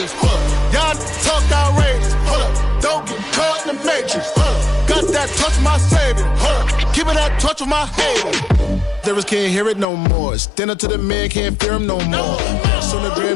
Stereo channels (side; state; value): right; drops out; at 9.9 s